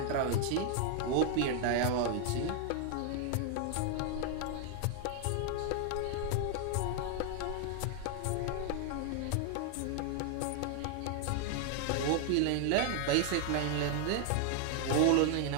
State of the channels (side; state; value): both; different; correlation 0.00